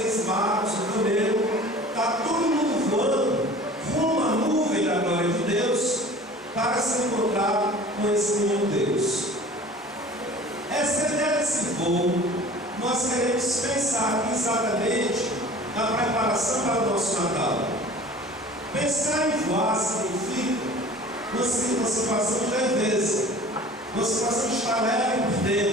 magos, o camelo, está todo mundo voando rumo à nuvem da glória de Deus para se encontrar com esse menino Deus. Essa ideia desse voo, nós queremos pensar aqui exatamente na preparação para o nosso Natal. Pensar em voar significa uma situação de leveza, uma situação de estar leve por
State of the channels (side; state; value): both; normal; correlation 0.44